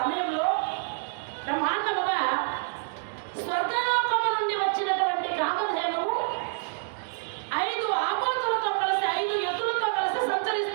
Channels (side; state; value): left; silent; digital silence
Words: బ్రహ్మాండముగా స్వర్గలోకము నుండి వచ్చినటువంటి కామధేనువు 5 ఆబోతులతో కలిసి 5 ఎద్దులతో కలిసి